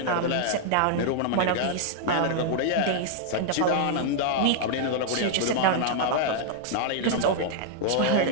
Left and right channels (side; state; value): both; different; correlation -0.01